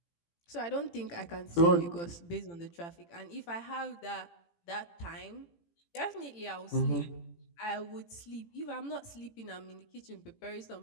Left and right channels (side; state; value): right; late; 18 ms